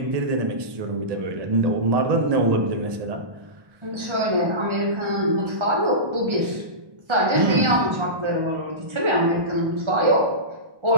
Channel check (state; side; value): late; left; 1.2 ms